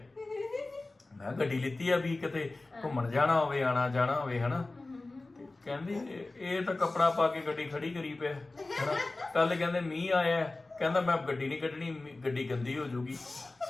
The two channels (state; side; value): quieter; right; 3.1 dB